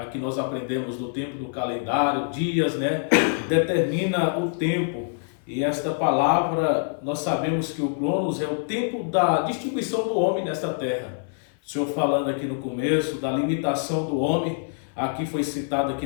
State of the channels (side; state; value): right; silent; 56 dB below the other